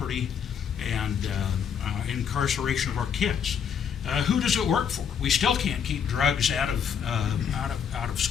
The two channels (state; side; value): quieter; right; 7.6 dB